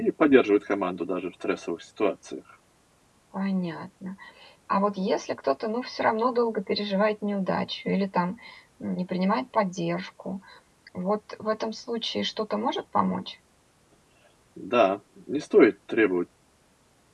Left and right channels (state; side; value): identical; both; correlation 1.00